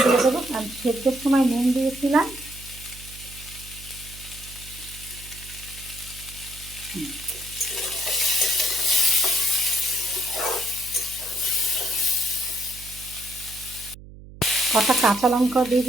দিয়ে দেবো, কারণ সেদ্ধের সময় নুন দিয়েছিলাম। কটা কাঁচা লঙ্কা দিয়ে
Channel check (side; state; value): right; noise; hum, 17 dB below the sound